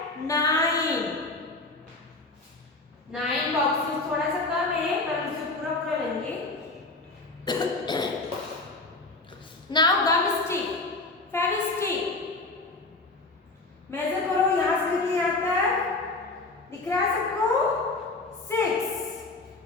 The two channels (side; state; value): right; quieter; 3.2 dB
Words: नाउ गम स्टिक, फेविस्टिक, मेजर करो यहां से लेके यहां तक, दिख रहा है सबको?